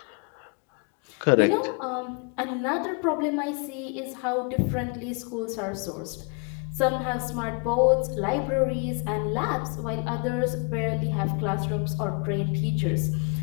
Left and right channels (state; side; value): quieter; right; 34.2 dB